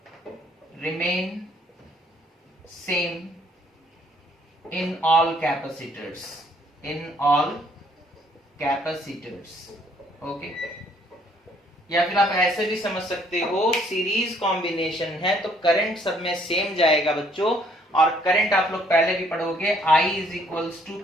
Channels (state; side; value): normal; both; correlation 0.64